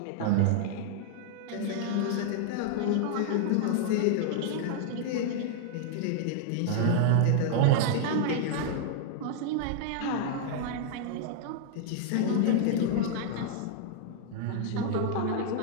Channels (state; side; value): different; both; correlation -0.01